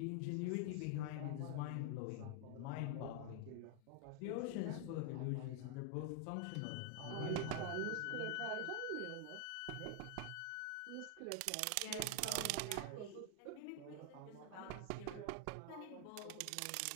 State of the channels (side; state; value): both; different; correlation 0.00